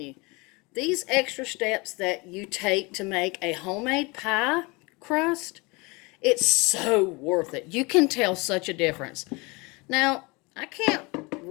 these extra steps that you take to make a homemade pie crust, it's so worth it. You can tell such a difference. Now, I can't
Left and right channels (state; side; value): quieter; right; 26.5 dB